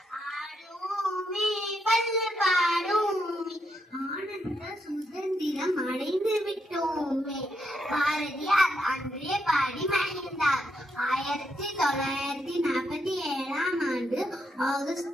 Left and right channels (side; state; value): both; normal; correlation 0.79